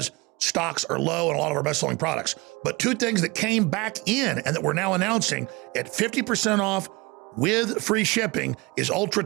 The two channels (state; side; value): quieter; left; 24.8 dB